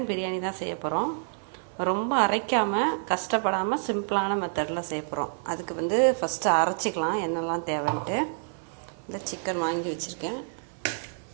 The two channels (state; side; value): silent; left; 56 dB below the other